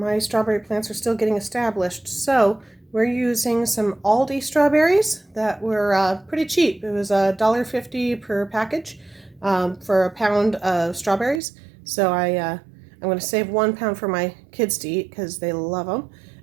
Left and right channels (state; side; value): drops out; left; at 11.4 s